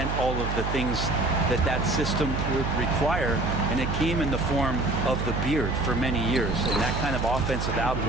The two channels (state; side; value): noise; right; hum, 2 dB below the sound